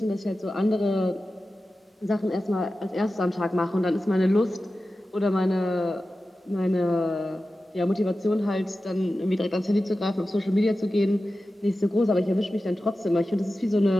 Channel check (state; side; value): normal; both; correlation 0.94